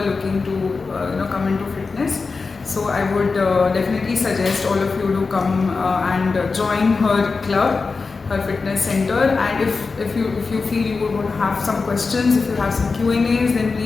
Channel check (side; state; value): right; quieter; 4.4 dB